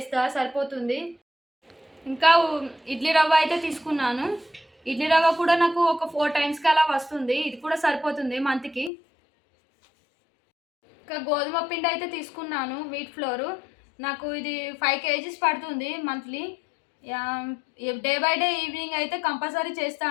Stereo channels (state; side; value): drops out; right; at 8.9 s